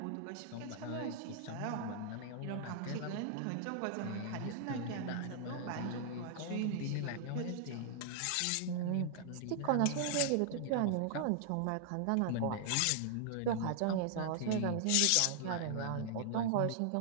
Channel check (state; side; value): different; both; correlation -0.01